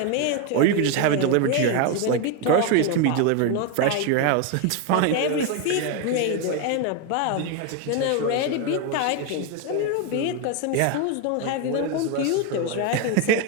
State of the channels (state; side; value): different; both; correlation 0.02